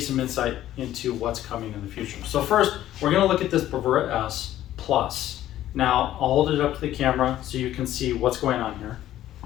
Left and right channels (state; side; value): quieter; right; 13.1 dB